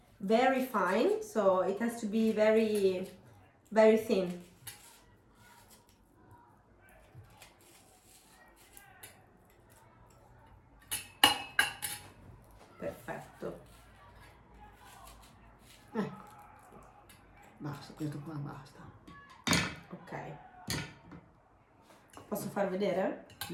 Very fine, so it has to be very, very thin. Perfetto. Ecco, basta, questo qua basta. Ok. Posso far vedere?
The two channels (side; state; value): both; identical; correlation 1.00